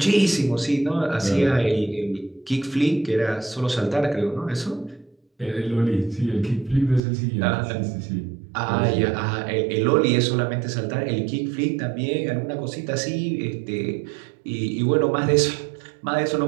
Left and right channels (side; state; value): left; drops out; at 7.0 s